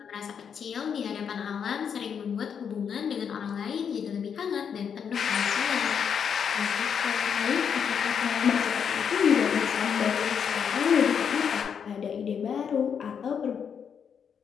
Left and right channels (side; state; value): right; quieter; 7.3 dB